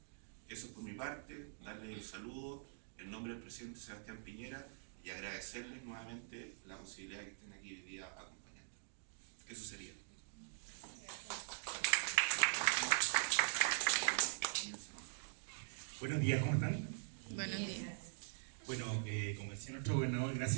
Eso es por mi parte, darles el saludo en nombre del presidente Sebastián Piñera y agradecerles nuevamente la posibilidad de que estén aquí hoy día acompañando. Eso sería. Buenos días, ¿cómo están? Buenos días. Bueno, como decía nuestro gobernador,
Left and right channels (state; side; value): silent; left; digital silence